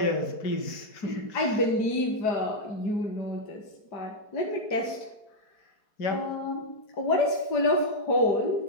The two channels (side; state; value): right; late; 4.7 ms